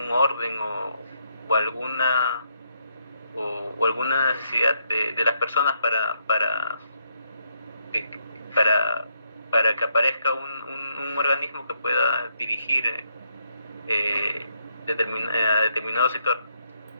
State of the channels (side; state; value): both; inverted; correlation -0.76